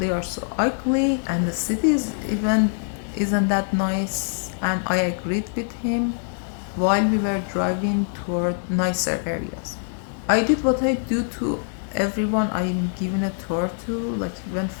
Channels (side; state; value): right; silent; digital silence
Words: are so ugly, and the city isn't that nice. And I agreed with him while we were driving toward nicer areas. I did what I do to everyone I'm giving a tour to, like when